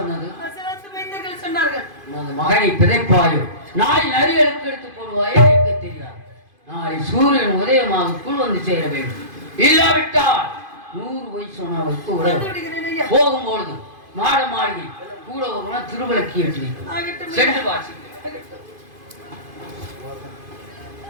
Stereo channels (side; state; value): left; late; 2.5 ms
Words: அசலாத்து மைந்தர்கள் சொன்னார்கள். உனது மகனை பிதைப்பாயோ நாளை நரிகளுக்கு எடுத்து போடுவாயோ எனக்கு தெரியாது. நாளை சூரியன் உதயமாகக்குள் வந்து சேர வேண்டும். இல்லாவிட்டால் 100 வயசு சொன்னவருக்கு வந்து விடுகிறேன் ஐயா. போகும்பொழுது மாட மாளிகை கூட ஒரு திருவிளக்கி ஏற்றி வைக்கும். ஆகட்டும் ஐயா. சென்று வாசி. ஆகட்டும்.